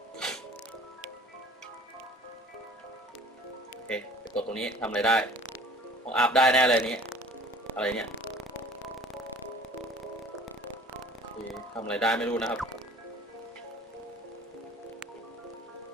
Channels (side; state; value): both; normal; correlation 0.48